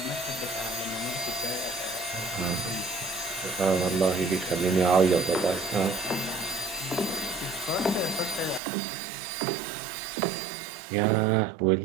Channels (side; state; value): left; drops out; at 8.6 s